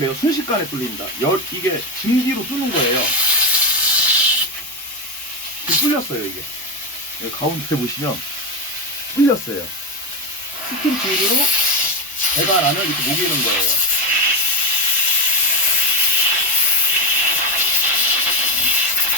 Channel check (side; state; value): both; normal; correlation 0.10